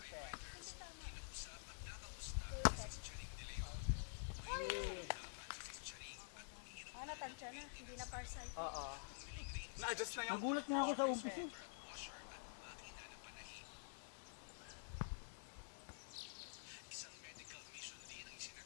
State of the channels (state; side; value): silent; right; digital silence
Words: Natansya na. Hindi na farsight. Oo. Na-adjust na yung... Nagulat nga ako sa umpis eh.